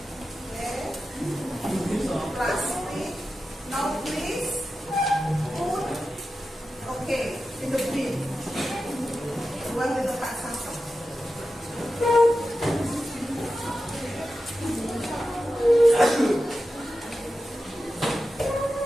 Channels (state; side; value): normal; both; correlation 0.92